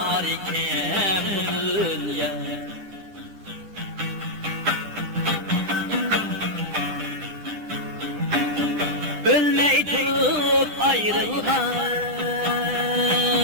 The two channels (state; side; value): late; left; 10 ms